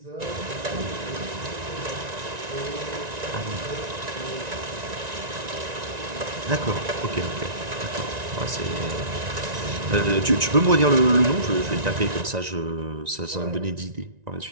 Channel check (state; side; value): late; left; 1.9 ms